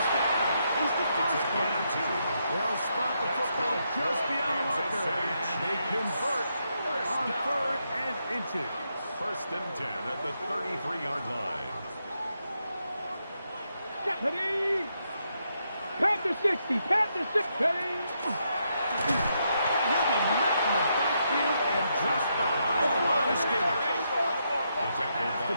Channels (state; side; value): inverted; both; correlation -0.80